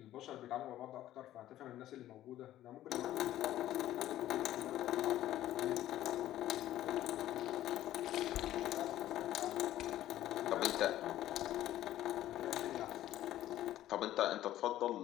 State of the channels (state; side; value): quieter; right; 13.5 dB